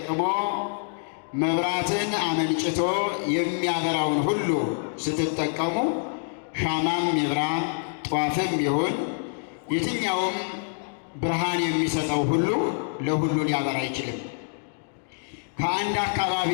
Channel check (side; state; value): right; silent; digital silence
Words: መብራትን አመንጭቶ የሚያበራውን ሁሉ ስትጠቀሙ ሻማም ይብራ ጧፍም ይሁን የትኛውም ብርሃን የሚሰጠው ሁሉ ለሁሉ ሊያበራ አይችልም። ከአንድ አካባቢ